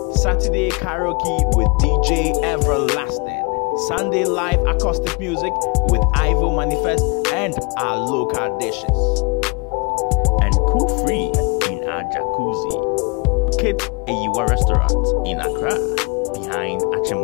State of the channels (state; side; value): quieter; right; 30.1 dB